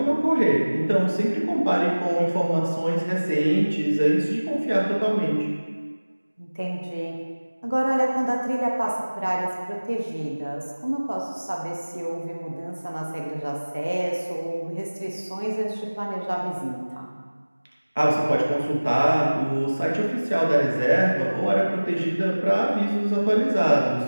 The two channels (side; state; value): both; inverted; correlation -1.00